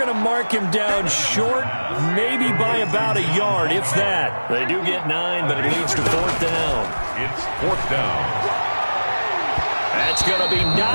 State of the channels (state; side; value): inverted; both; correlation -1.00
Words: to mark him down short, maybe by about a yard, if that. They do get 9, but it leads to 4th down. It's 4th down. That's going to be